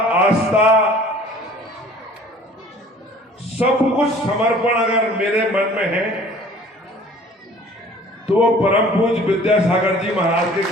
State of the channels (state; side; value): normal; both; correlation 0.50